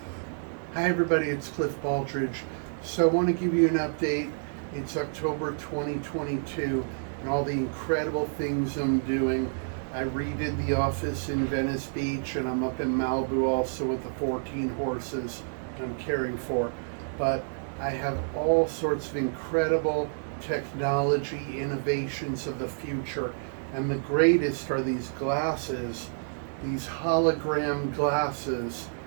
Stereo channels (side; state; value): left; silent; 57 dB below the other